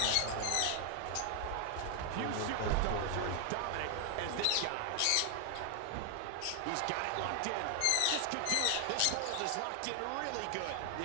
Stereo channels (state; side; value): different; both; correlation 0.00